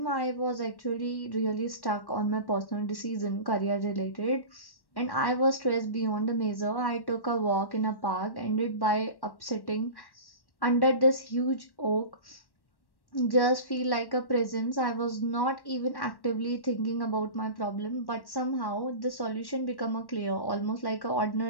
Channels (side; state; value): right; late; 1.1 ms